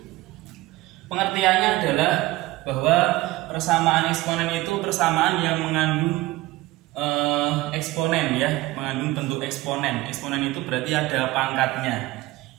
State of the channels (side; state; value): left; quieter; 18.7 dB